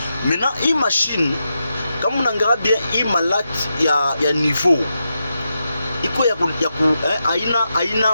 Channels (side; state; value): both; inverted; correlation -0.87